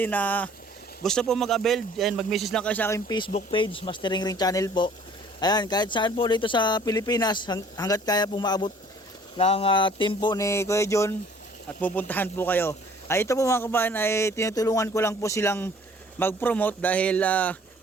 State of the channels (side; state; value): both; normal; correlation 0.54